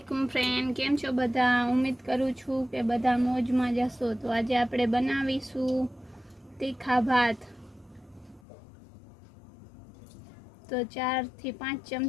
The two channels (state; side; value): drops out; right; at 8.4 s